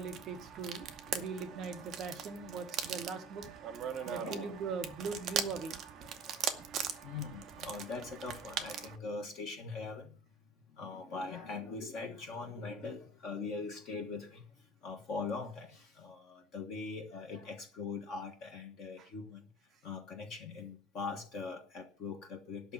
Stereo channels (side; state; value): both; normal; correlation 0.43